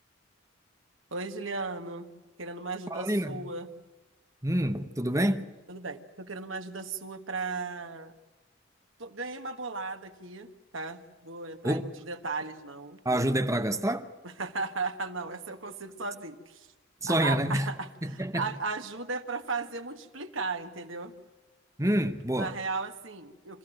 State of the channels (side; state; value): both; normal; correlation 0.42